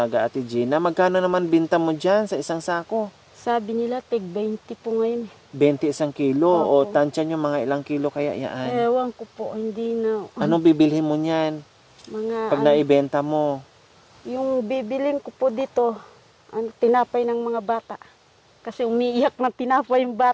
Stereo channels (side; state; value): both; identical; correlation 1.00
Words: ate Gina. Magkano naman binta mo dyan sa isang sako? Sabi nila, tig 20 po ngayon. 20 isang kilo. Opo. O tansya nyo, mga ilang kilo kaya yan? Ewan ko po, hindi na. Anong bibilhin mo niyan? Mga, Pag naibenta mo? yung bibilin ko po dito, tinapay ng mga bata. Kasi umiiyak ng tinapay yung